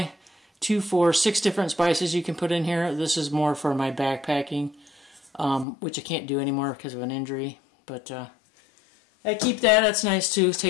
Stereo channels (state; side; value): drops out; right; at 5.7 s